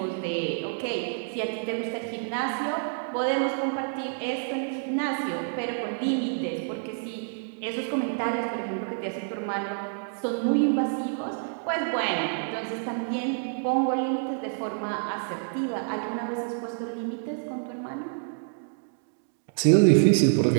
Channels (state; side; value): silent; left; digital silence